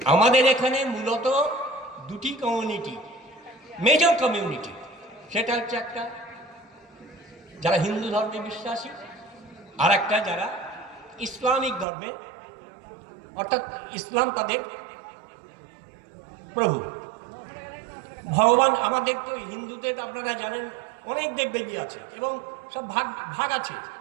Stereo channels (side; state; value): left; drops out; at 11.9 s